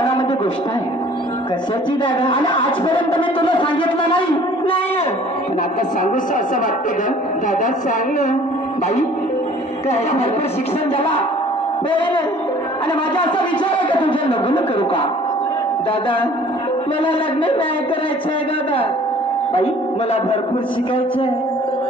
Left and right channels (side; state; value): both; normal; correlation 0.52